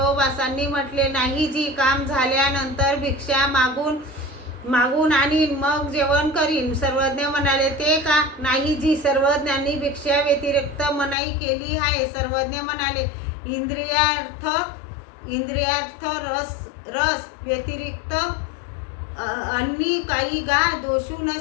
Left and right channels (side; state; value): right; drops out; at 11.2 s